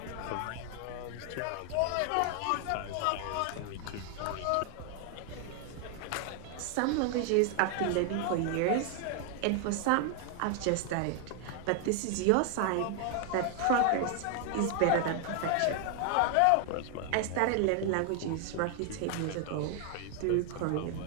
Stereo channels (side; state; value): both; different; correlation 0.00